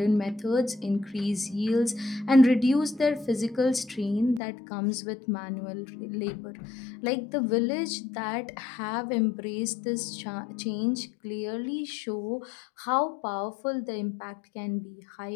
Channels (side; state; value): right; drops out; at 4.4 s